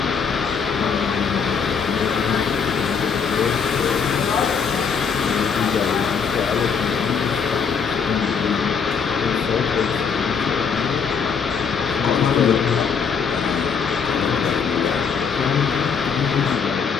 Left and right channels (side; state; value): right; quieter; 6.2 dB